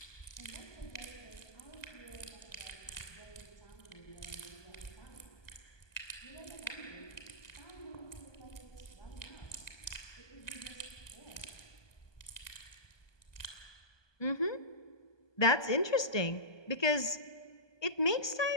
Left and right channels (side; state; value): right; late; 1.2 ms